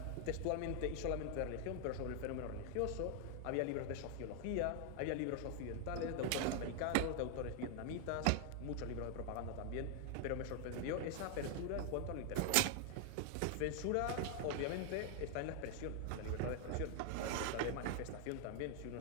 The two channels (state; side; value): different; both; correlation 0.00